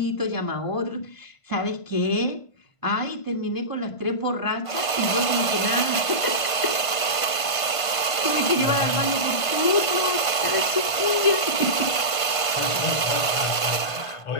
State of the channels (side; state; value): right; late; 1.5 ms